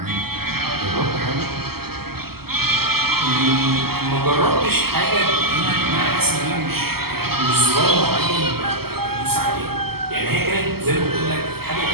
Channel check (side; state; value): left; late; 0.95 ms